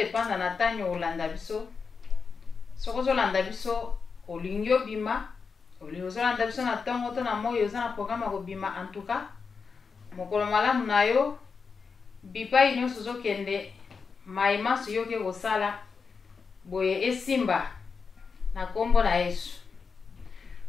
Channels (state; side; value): quieter; right; 5.3 dB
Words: na tanyo olanda biso. Soko ozolanda biso olingi obima, olingi ozolanda biso na ntongo to na moyo oza na programme ya kobima. En tout cas mokolo malamu na yo bipai nyonso ozokende maimaso yo ke kosala boye esimba na kombo na Yesu.